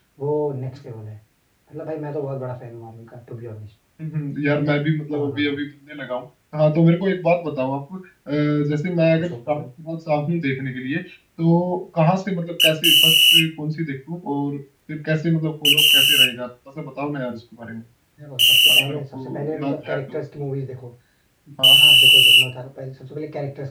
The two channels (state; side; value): identical; both; correlation 1.00